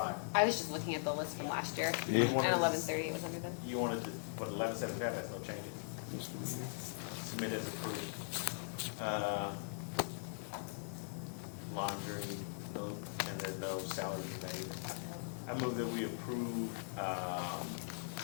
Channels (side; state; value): right; silent; 51 dB below the other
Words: I was just looking at the list from last year, Yeah. and 11:38 was under them. You wanted to, what, 1175, that's no changes? Submit as approved. Laundry, no, and there's no salaries made. I move that we approve,